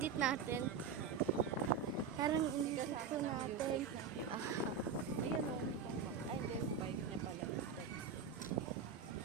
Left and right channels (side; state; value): left; quieter; 6.2 dB